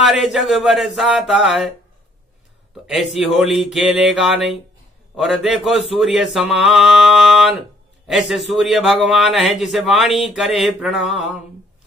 जग बरसाता है। तो ऐसी होली खेलेगा नहीं। और देखो सूर्य समान, ऐसे सूर्य भगवान है जिसे वाणी करे प्रणाम।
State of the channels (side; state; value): both; normal; correlation 0.62